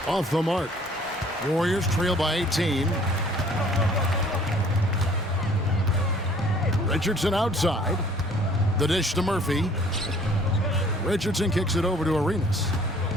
off the mark. Warriors trail by 18. Richardson outside. The dish to Murphy. Richardson kicks it over to Arenas.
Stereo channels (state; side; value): normal; both; correlation 0.56